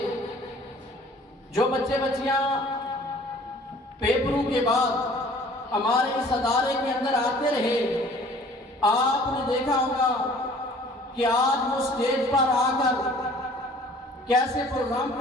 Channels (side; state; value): both; normal; correlation 0.52